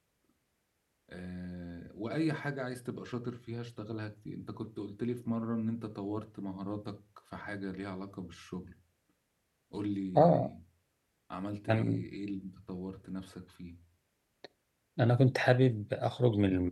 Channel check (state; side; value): identical; both; correlation 1.00